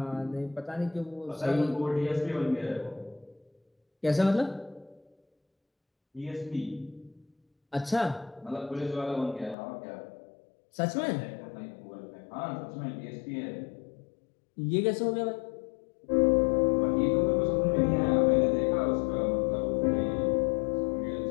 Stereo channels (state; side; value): drops out; right; at 9.6 s